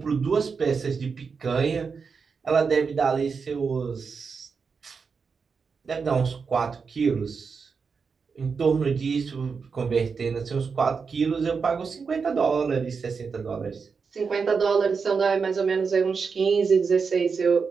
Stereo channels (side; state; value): left; quieter; 5.4 dB